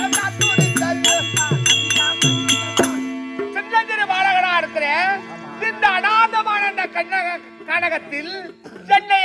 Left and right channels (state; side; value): identical; both; correlation 1.00